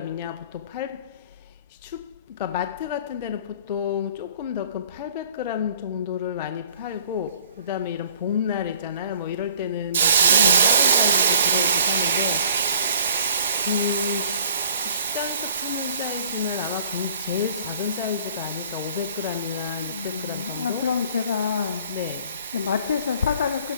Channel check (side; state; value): both; inverted; correlation -0.53